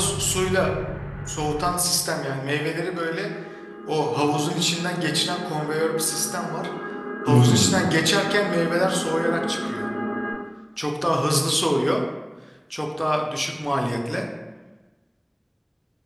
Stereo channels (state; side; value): identical; both; correlation 1.00